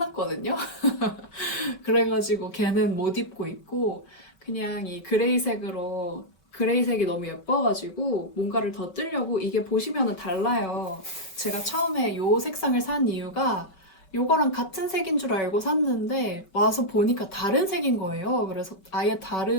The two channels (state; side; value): late; right; 5.3 ms